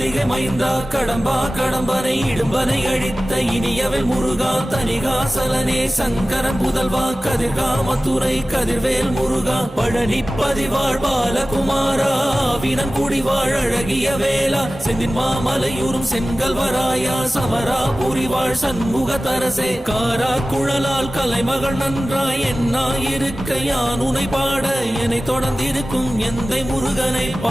மைந்தா கடம்பா கடம்பனை இடும்பனை அழித்த இனியவன் முருகா தனிகாசலனே சங்கரன் புதல்வா கதிர்கா மத்துரை கதிர்வேல் முருகா பழனி பதிவாழ் பாலகுமாரா வினன் குடிவாழ் அழகிய வேளா செந்தின் மாமலையூரும் செங்கல்வராயா சமரா புரிவாழ் சண்முக தரசே காரா குழலால் கலைமகள் நன்றாய் என்னாயிருக்க யான் உனை பாட என்னை தொடர்ந்திருக்கும் எந்தை முருகனை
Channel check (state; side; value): normal; both; correlation 0.96